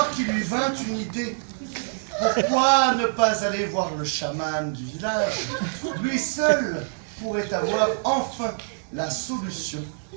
qu'il lui vint une idée. Pourquoi ne pas aller voir le chaman du village? Lui seul pourrait avoir enfin la solution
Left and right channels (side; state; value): left; silent; 62 dB below the other